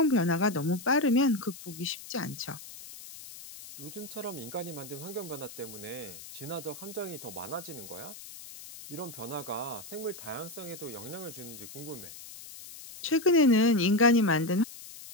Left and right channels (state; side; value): noise; left; hiss, 14 dB below the sound